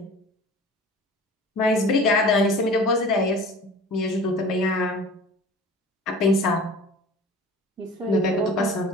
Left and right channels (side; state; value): both; normal; correlation 0.42